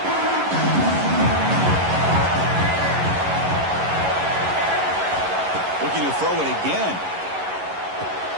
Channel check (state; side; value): late; left; 11 ms